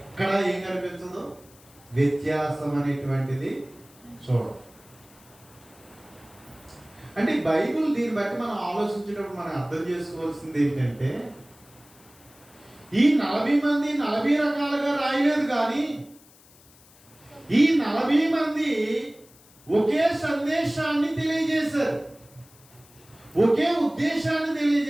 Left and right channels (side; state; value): left; noise; hiss, 26 dB below the sound